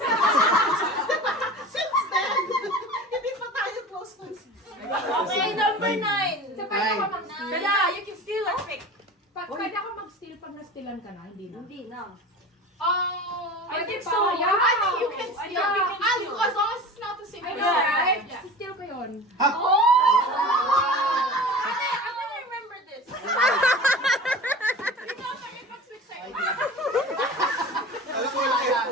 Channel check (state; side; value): normal; both; correlation 0.36